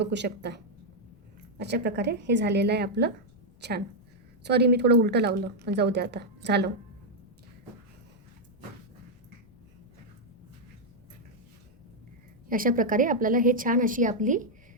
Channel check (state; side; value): noise; left; rumble, 28 dB below the sound